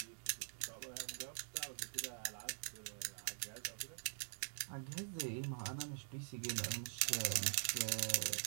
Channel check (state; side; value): silent; left; digital silence